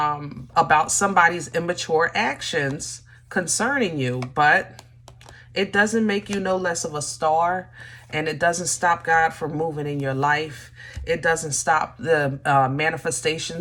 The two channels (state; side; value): identical; both; correlation 1.00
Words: about somebody's immature actions concerning you, but it doesn't make you no less of a star, and it doesn't stop God from moving in your life. It doesn't stop the